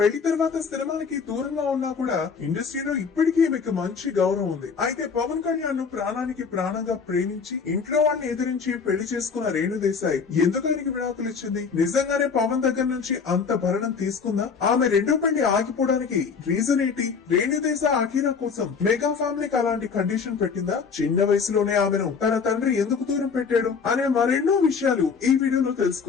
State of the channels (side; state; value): right; quieter; 5.7 dB